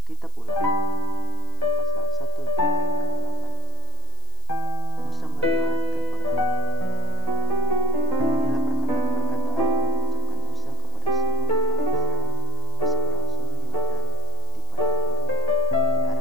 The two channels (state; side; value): noise; right; hiss, 23 dB below the sound